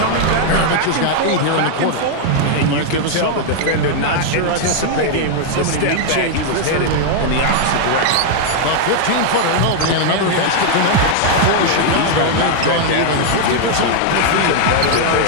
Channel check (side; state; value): both; different; correlation 0.00